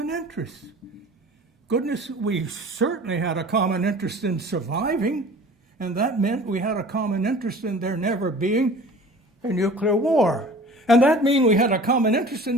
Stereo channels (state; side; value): normal; both; correlation 0.44